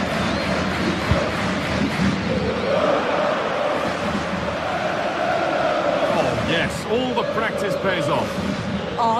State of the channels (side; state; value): both; identical; correlation 1.00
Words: Oh yes, all the practice pays off. Oh,